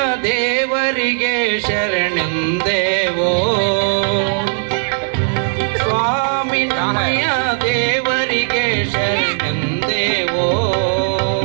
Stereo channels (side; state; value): left; silent; 57 dB below the other